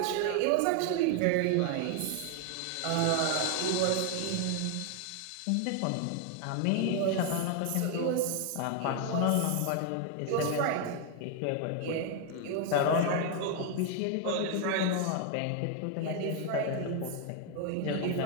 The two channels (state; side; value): different; both; correlation 0.00